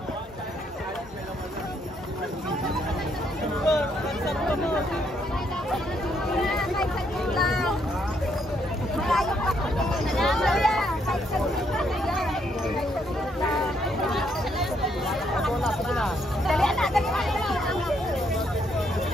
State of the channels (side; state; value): both; normal; correlation 0.73